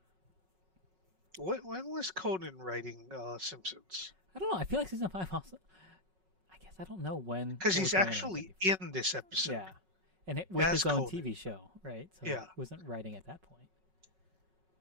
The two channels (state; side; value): late; left; 5.4 ms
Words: When was Conan writing Simpsons? I don't know. I feel like season 5 also. I guess I don't know Because what was he's going on actually 1994. in this episode Yeah. And with as his own Conan. TV show, right? So he Yeah. wasn't writing at that point.